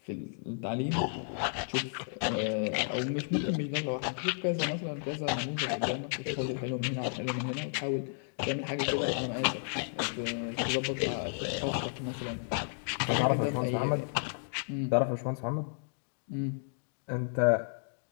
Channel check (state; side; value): silent; right; digital silence